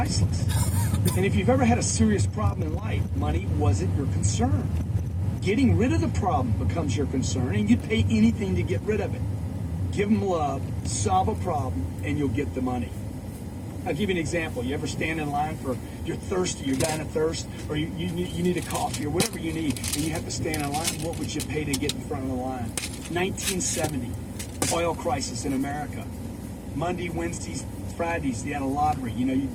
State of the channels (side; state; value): both; identical; correlation 1.00